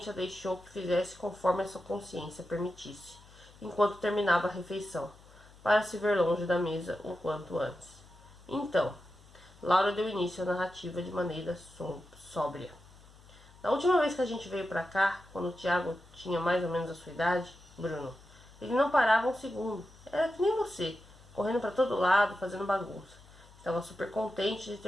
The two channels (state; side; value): noise; left; hum, 24 dB below the sound